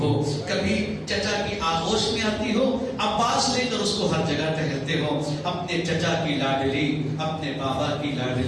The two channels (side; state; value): both; identical; correlation 1.00